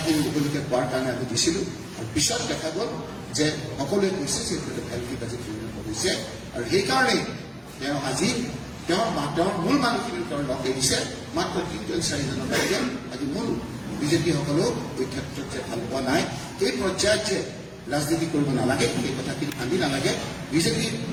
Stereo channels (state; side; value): identical; both; correlation 1.00